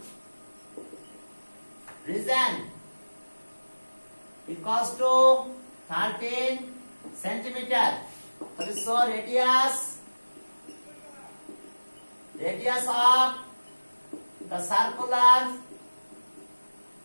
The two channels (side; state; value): both; inverted; correlation -1.00